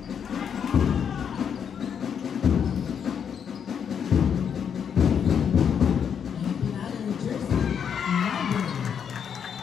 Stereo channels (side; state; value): right; quieter; 7.6 dB